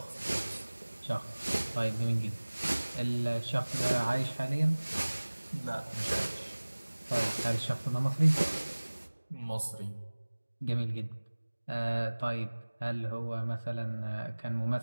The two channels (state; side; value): inverted; both; correlation -1.00